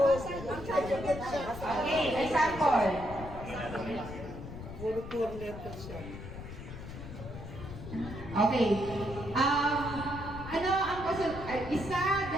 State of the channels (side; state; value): left; noise; rumble, 11 dB below the sound